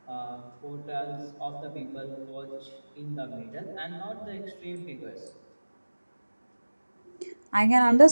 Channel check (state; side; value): inverted; both; correlation -1.00